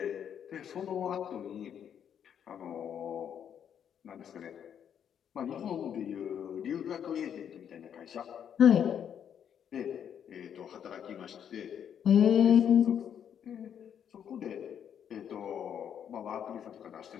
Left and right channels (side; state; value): right; quieter; 8.7 dB